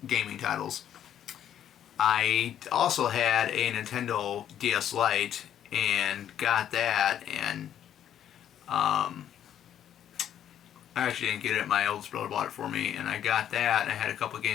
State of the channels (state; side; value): quieter; right; 10.3 dB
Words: gaming titles. I also had a Nintendo DS Lite and got that, and I actually didn't get it. My oldest brother bought it for me, and I got that, and I had a couple of